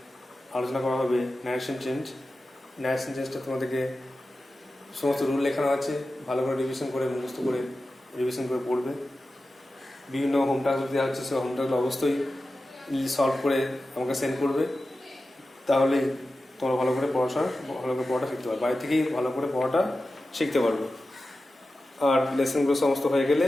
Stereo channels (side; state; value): both; normal; correlation 0.93